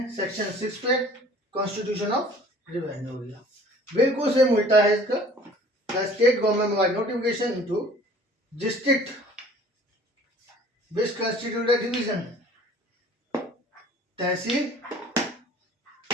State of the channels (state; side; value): normal; both; correlation 0.50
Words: सेक्शन 6 पे, कॉन्स्टिट्यूशन ऑफ रिवेन्यू एरिया। बिल्कुल सेम उल्टा है इसका। The state government by notification into district which constitute a division, tehsil